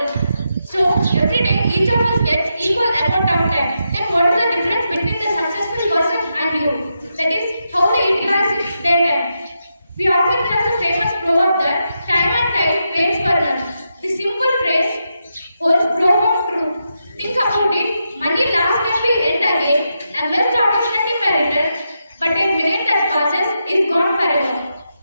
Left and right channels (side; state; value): both; inverted; correlation -0.85